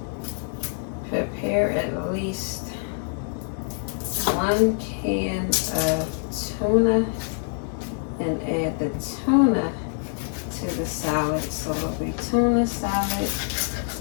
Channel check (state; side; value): silent; right; digital silence